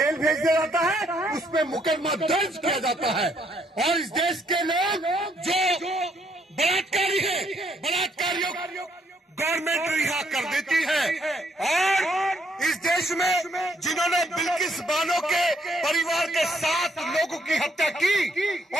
भेज दिया जाता है, उस पर मुकदमा दर्ज किया जाता है। और इस देश के लोग जो बलात्कारी है, बलात्कारियों गवर्नमेंट रिहा कर देती है। और इस देश में जिन्होंने बिल्किस बानो के परिवार के 7 लोगों की हत्या की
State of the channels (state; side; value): normal; both; correlation 0.71